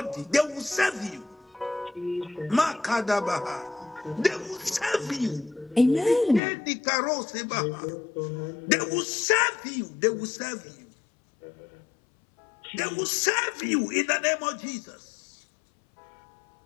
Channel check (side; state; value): right; drops out; at 6.4 s